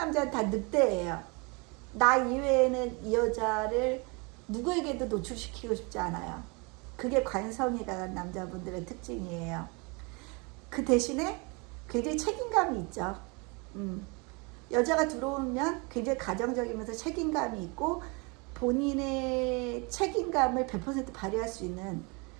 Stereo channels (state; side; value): quieter; left; 30.1 dB